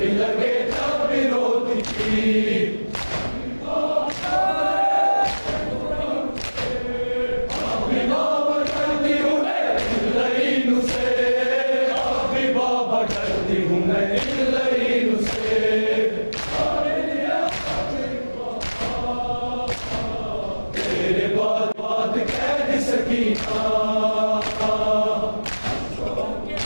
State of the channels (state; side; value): inverted; both; correlation -1.00